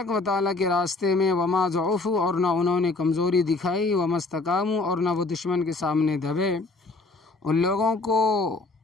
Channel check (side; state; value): right; quieter; 3.5 dB